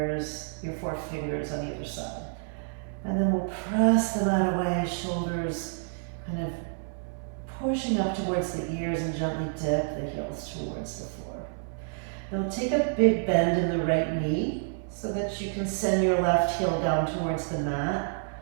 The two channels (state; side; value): silent; left; 59 dB below the other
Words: on either side. And then we'll press them out away, shoulders kind of pushing up towards the ears and gently dip the heels towards the floor. Now take a big bend in the right knee so that you can send your left heel down towards the mat